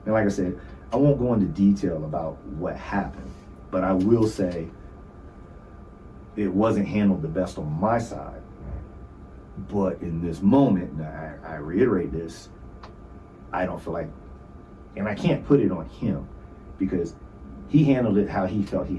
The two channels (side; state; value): both; identical; correlation 1.00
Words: And like I said, I won't go into detail about what happened, but I will say it wasn't handled the best on my side. But in this moment, and I reiterate this, I don't feel like, and I can't put it on him, because he handled it how he felt he